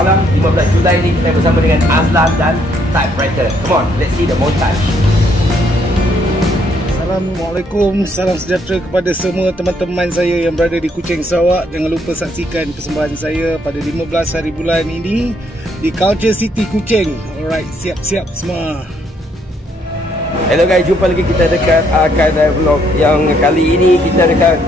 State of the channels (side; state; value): both; normal; correlation 0.70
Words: 15 Julai ini kita bersama dengan Azlan dan Typewriter. Come on, let's see the montage. Assalamualaikum, salam sejahtera kepada semua teman-teman saya yang berada di Kuching, Sarawak. Jangan lupa saksikan persembahan saya pada 15 hari bulan ini di Culture City Kuching. Alright, siap-siap semua. Hello guys, jumpa lagi kita dekat Akadai Vlog. Yang kali ini kita dekat